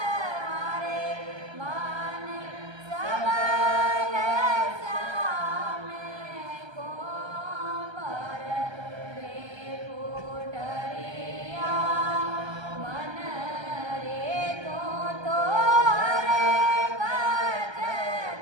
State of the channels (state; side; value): late; left; 1.3 ms